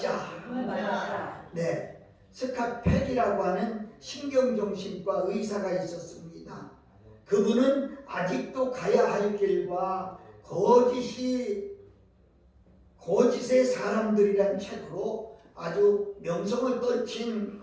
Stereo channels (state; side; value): identical; both; correlation 1.00